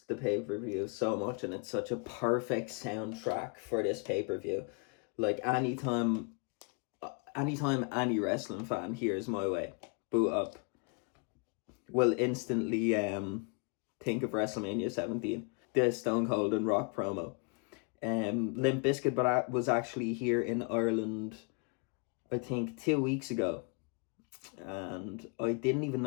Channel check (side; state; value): right; quieter; 35.2 dB